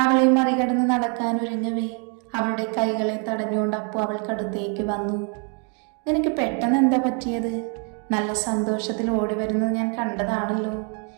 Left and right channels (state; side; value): quieter; left; 38.5 dB